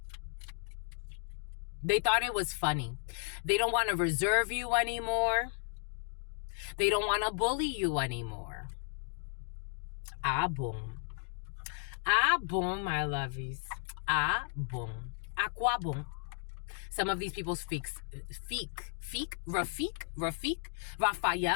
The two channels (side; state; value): right; silent; 55 dB below the other